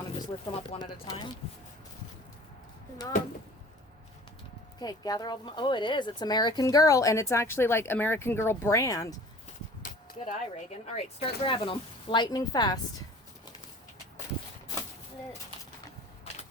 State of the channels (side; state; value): both; normal; correlation 0.46